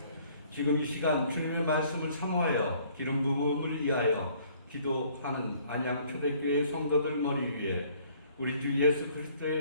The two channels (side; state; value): both; inverted; correlation -0.59